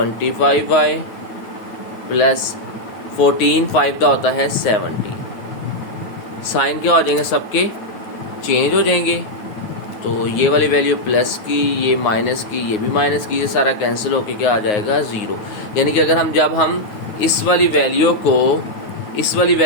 प्लस 14 5 दा होता है 70। साइन क्या हो जाएंगे, सबके चेंज हो जाएंगे। तो ये वाली वैल्यू प्लस की, ये माइनस की, ये भी माइनस की, ये सारा कैंसिल होके क्या आ जाएगा 0। यानी कि अगर जब हम इस वाली वैल्यू को इस वाली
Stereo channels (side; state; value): right; late; 9.5 ms